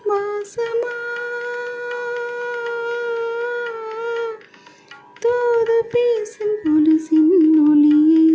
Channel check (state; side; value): identical; both; correlation 1.00